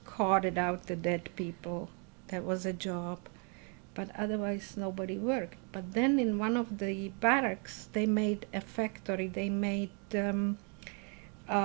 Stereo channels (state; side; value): quieter; left; 37.0 dB